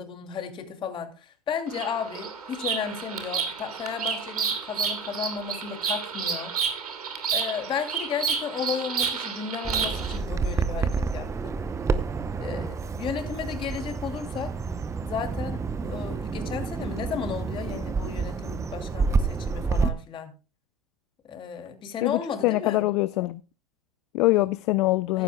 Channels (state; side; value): normal; both; correlation 0.40